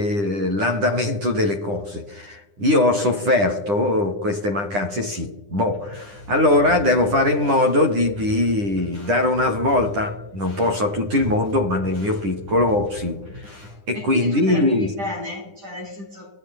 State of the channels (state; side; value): late; left; 10 ms